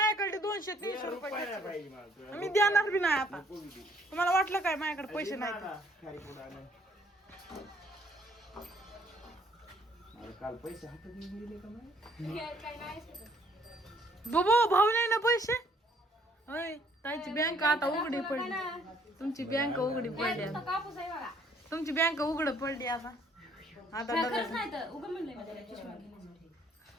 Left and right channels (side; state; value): both; normal; correlation 0.64